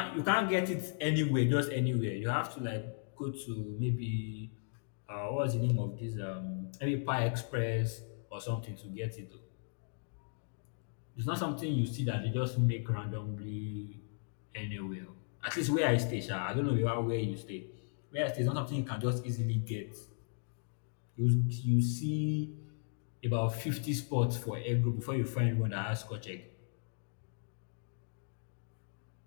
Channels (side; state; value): right; silent; digital silence